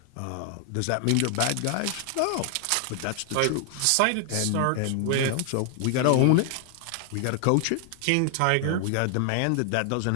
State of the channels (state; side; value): different; both; correlation 0.00